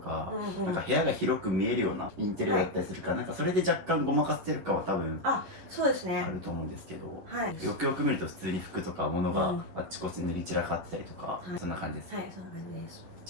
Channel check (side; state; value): left; late; 11 ms